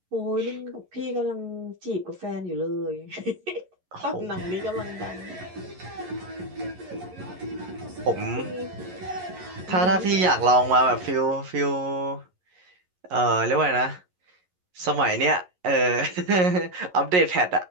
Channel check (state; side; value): late; left; 11 ms